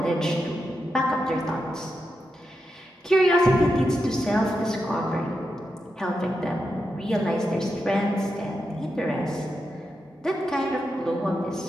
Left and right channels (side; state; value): both; normal; correlation 0.87